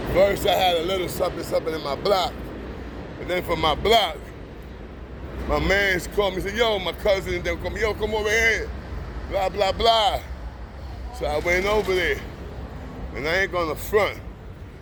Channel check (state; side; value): identical; both; correlation 1.00